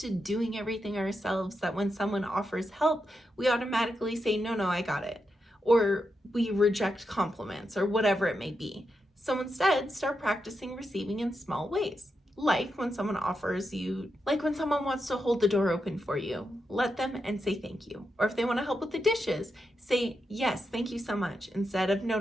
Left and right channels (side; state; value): both; normal; correlation 0.86